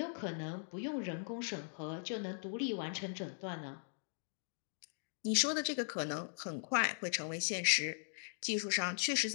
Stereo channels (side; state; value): right; silent; digital silence